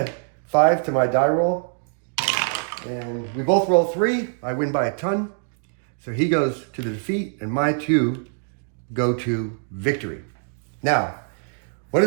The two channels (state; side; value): silent; left; digital silence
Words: 5 to my die roll. And we both roll 3. I win by a ton. So he goes to the defeat, and my 2 go to victory. Now, what